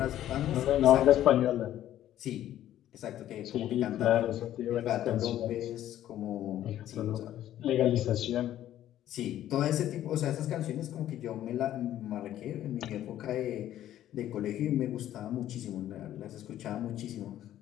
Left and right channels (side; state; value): right; quieter; 12.3 dB